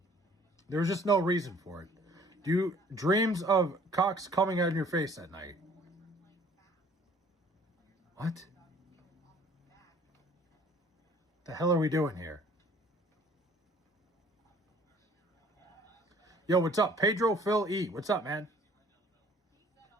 There was just no reason for it. Do you dreams of cocks coming out of your face at night? What? The hell are we doing here? Yo, what's up? Pedro Phil E. What's up, man?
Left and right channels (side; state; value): both; normal; correlation 0.55